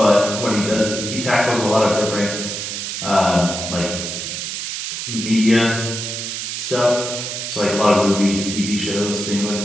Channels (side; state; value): right; noise; hiss, 5 dB below the sound